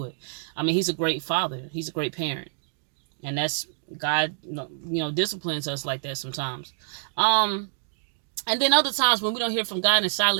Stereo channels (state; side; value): silent; left; digital silence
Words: it. He's a great father. He's a great parent, and that's God. Disciplines us like that sometimes. And then other times when we don't hear from God in